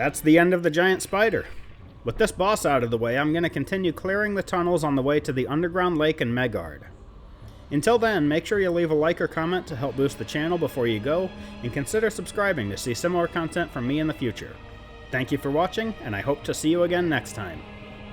That's the end of the giant spider. With this boss out of the way, I'm going to continue clearing the tunnels on the way to the underground lake in Megard. Until then, make sure you leave a like or comment to help boost the channel before you go, and consider subscribing to see similar content from me in the future. Thank you for watching, and I hope to see you again next time.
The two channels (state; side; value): identical; both; correlation 1.00